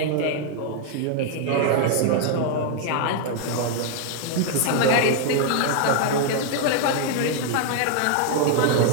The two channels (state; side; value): different; both; correlation 0.00